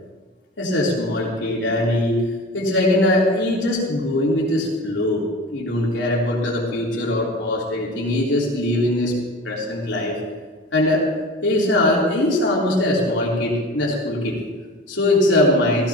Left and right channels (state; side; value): normal; both; correlation 0.36